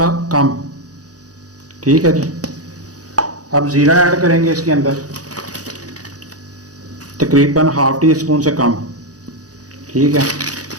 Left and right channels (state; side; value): late; left; 0.67 ms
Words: कम, ठीक है जी। अब ज़ीरा ऐड करेंगे इसके अंदर तकरीबन ½ टी स्पून से कम, ठीक है।